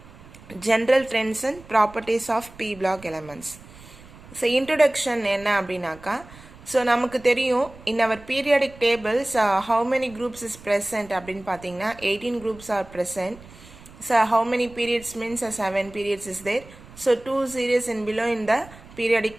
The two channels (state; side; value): noise; right; rumble, 20 dB below the sound